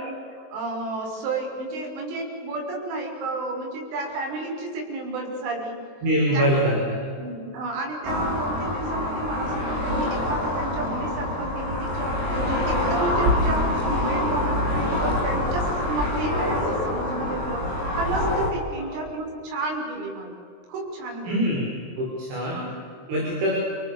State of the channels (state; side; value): late; left; 23 ms